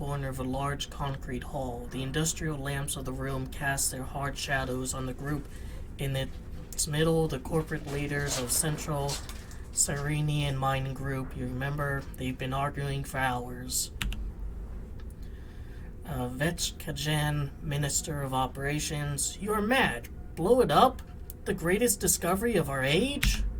of a large concrete hall. The industrial lamps of the room cast their hard shadows on the group in its middle, the corporate leaders of Central Cyrenian Mining Group. You remember, they've been arguing for hours. Vetchkajan, Minister of Operations. You are mad. Blow it up? The greatest discovery of our age?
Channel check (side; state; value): both; identical; correlation 1.00